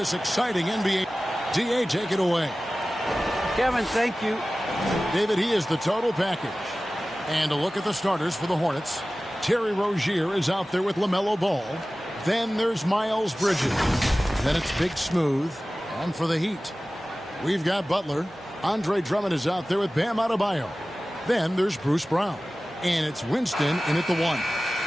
exciting NBA. DA, take it away. Kevin, thank you. David, he is the total package. And a look at the starters for the Hornets. Terry Rozier is out there with LaMelo Ball. Then there's Miles Bridges. Then it's Big Smooth. And for the Heat, we've got Butler. Andre Drummond is out there with Bam Adebayo. Then there's Bruce Brown. And it's Winston in at the 1.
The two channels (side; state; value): both; normal; correlation 0.97